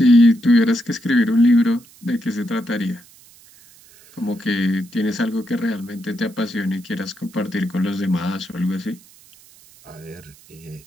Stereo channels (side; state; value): right; noise; hiss, 25 dB below the sound